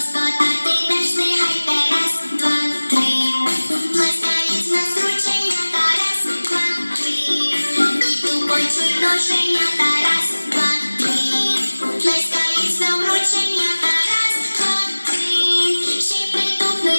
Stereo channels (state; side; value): inverted; both; correlation -1.00